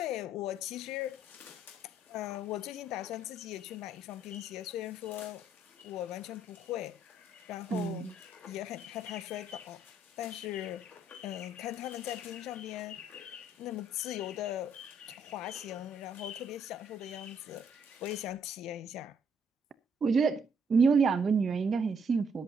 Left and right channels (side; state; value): both; normal; correlation 0.68